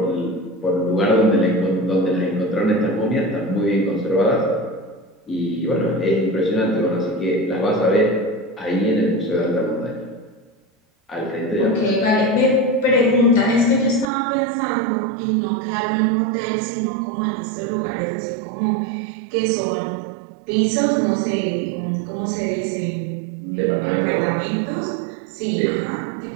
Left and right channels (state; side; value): drops out; left; at 14.1 s